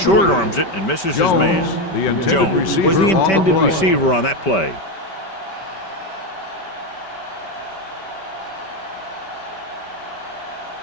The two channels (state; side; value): late; right; 5.2 ms